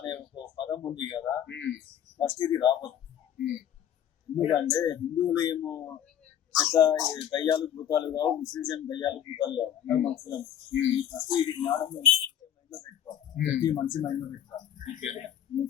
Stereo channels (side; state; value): right; quieter; 10.0 dB